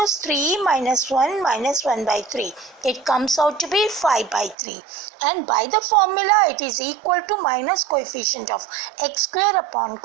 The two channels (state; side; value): drops out; left; at 4.5 s